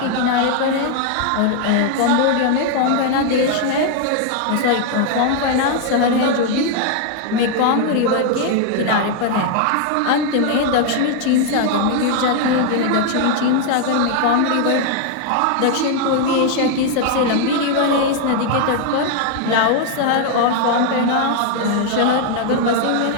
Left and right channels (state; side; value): different; both; correlation 0.00